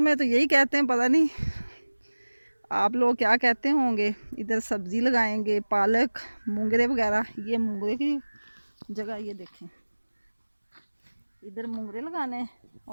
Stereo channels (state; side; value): inverted; both; correlation -1.00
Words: में तो यही कहते हैं, पता नहीं आप लोग क्या कहते होंगे। इधर सब्ज़ी लगाएंगे, पालक, मूंगरे वगैरह। ये मूंगरे की जगह ये देखें, इधर मूंगरे लगाने